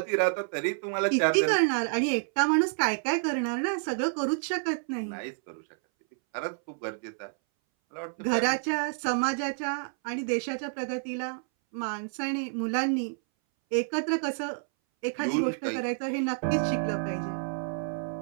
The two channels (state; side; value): silent; left; 59 dB below the other